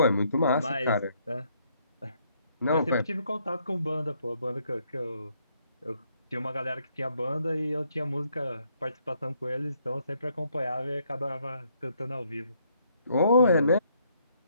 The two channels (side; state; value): both; inverted; correlation -0.71